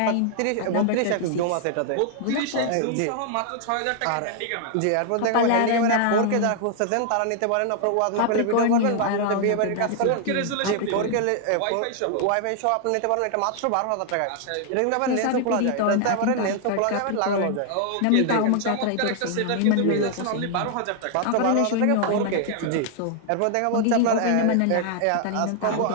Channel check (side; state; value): both; different; correlation 0.00